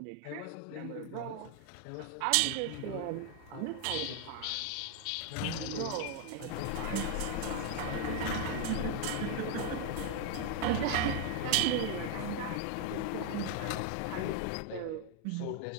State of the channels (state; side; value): different; both; correlation 0.00